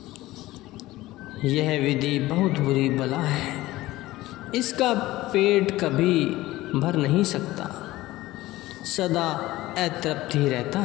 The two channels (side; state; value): right; quieter; 17.4 dB